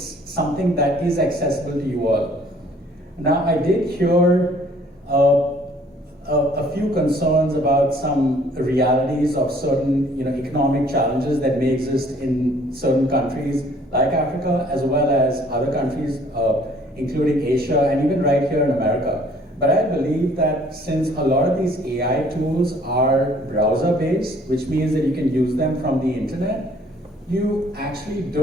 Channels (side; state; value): both; normal; correlation 0.58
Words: that is accessible to you all. Now, I did hear a few concerns about some realities of certain economic challenges that may exist in certain countries like Africa, as well as other countries, including Asia and even right here in America. But I believe that since a lot of these AI tools are browser-based, which means that you can use them from the internet, you actually